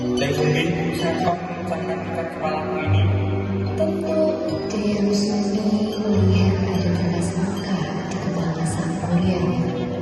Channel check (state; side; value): identical; both; correlation 1.00